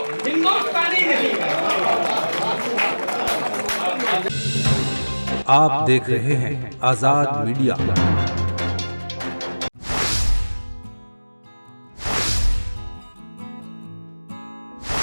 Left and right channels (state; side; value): inverted; both; correlation -1.00